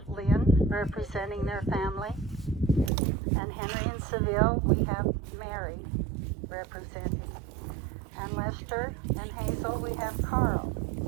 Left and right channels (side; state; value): left; drops out; at 2.9 s